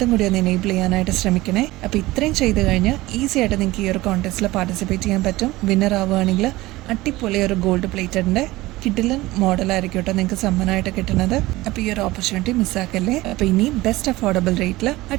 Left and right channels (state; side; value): quieter; left; 18.9 dB